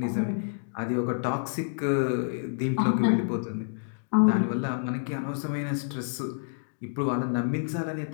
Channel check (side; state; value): right; silent; digital silence